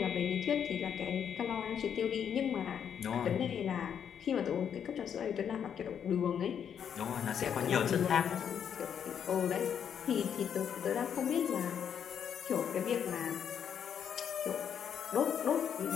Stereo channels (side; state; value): right; quieter; 8.3 dB